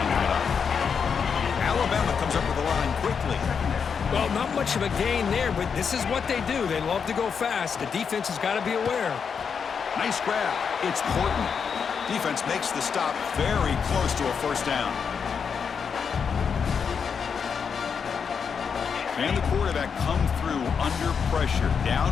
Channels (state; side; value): quieter; right; 6.4 dB